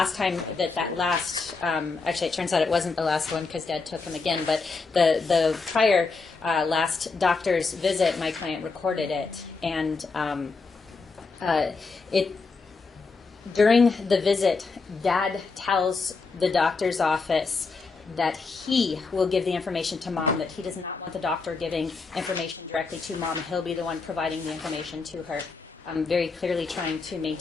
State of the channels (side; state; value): right; quieter; 4.3 dB